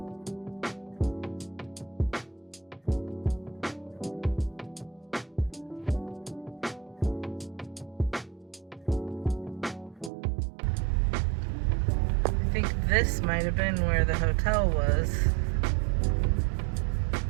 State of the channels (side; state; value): left; drops out; at 10.1 s